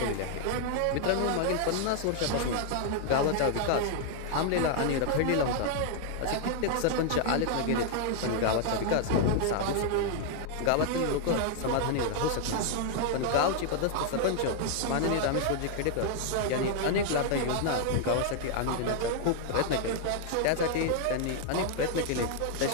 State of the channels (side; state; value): both; different; correlation 0.00